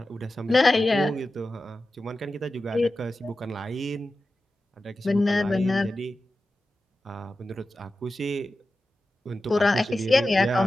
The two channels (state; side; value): normal; both; correlation 0.93